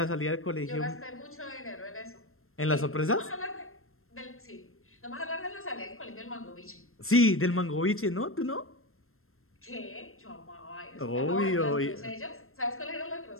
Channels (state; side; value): late; right; 0.62 ms